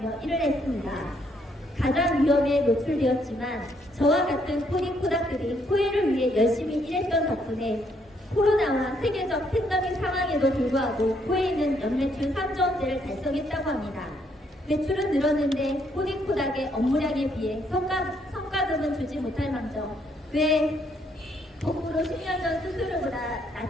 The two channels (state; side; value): normal; both; correlation 0.71